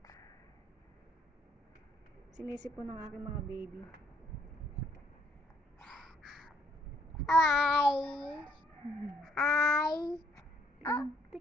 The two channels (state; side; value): normal; both; correlation 0.67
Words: Sinisip po ng aking mga baby. Ay.